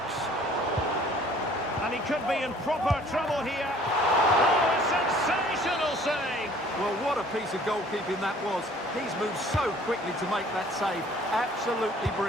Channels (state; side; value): normal; both; correlation 0.54